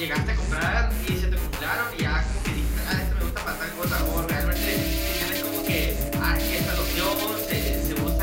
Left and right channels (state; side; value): identical; both; correlation 1.00